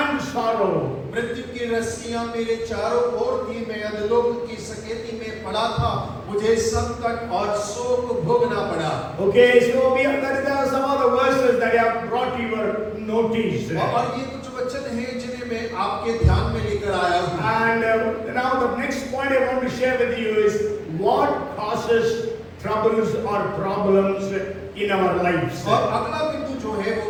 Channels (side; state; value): both; identical; correlation 1.00